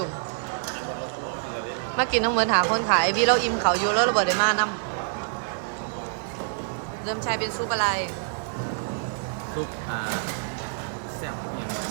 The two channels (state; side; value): silent; left; 58 dB below the other